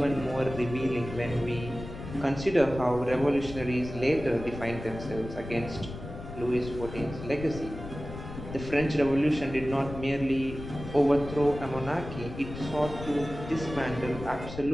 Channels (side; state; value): left; noise; rumble, 10 dB below the sound